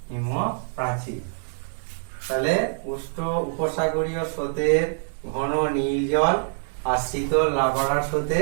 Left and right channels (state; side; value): silent; left; digital silence